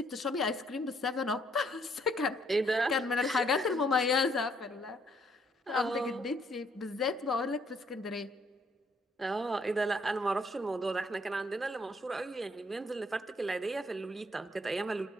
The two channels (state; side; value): normal; both; correlation 0.68